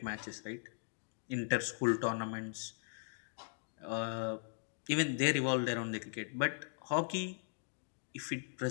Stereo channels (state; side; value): silent; right; digital silence